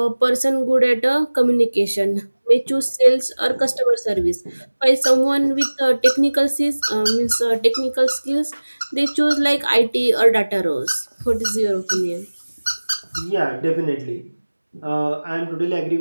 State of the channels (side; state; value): both; inverted; correlation -1.00